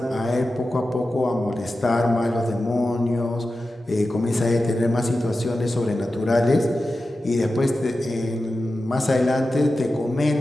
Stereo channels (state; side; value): normal; both; correlation 0.93